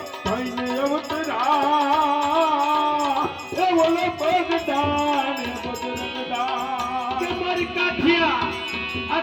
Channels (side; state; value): both; identical; correlation 1.00